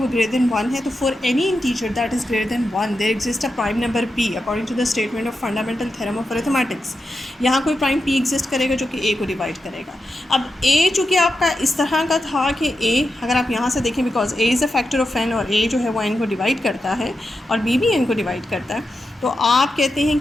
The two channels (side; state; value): both; normal; correlation 0.88